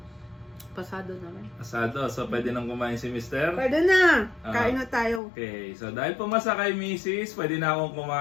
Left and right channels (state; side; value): drops out; right; at 5.2 s